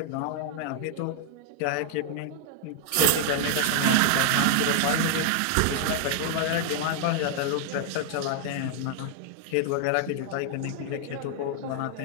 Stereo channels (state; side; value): different; both; correlation -0.01